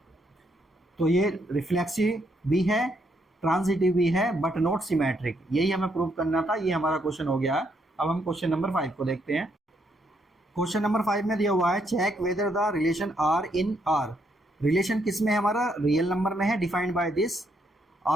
तो ये रिफ्लेक्सिव भी है, ट्रांजिटिव भी है, बट नॉट सिमेट्रिक। यही हमें प्रूव करना था। ये हमारा क्वेश्चन हो गया है। अब हम क्वेश्चन नंबर 5 को देखते हैं। क्वेश्चन नंबर 5 में दिया हुआ है, check whether the relation R in R. Relation किस में है हमारा, रियल नंबर में है। Defined by this,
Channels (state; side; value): normal; both; correlation 0.74